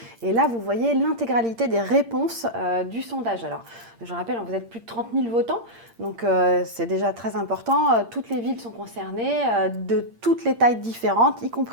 et là vous voyez l'intégralité des réponses du sondage. Alors je rappelle, vous êtes plus de 30 000 votants, donc c'est déjà très important. Toutes les villes sont concernées, de toutes les tailles différentes, y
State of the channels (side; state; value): left; late; 8.7 ms